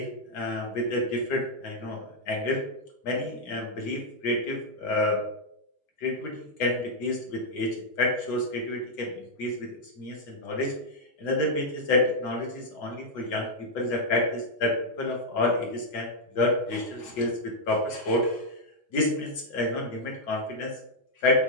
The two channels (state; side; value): late; right; 7.0 ms